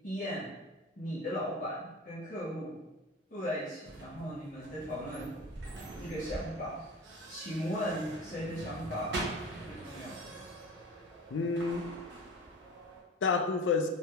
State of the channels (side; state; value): both; normal; correlation 0.33